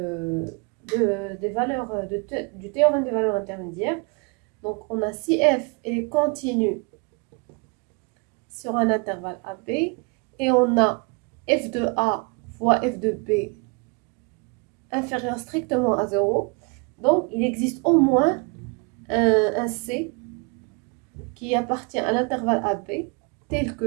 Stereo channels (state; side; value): quieter; left; 32.0 dB